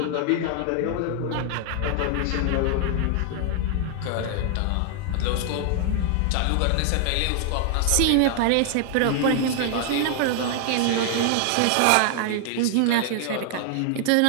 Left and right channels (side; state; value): both; different; correlation 0.00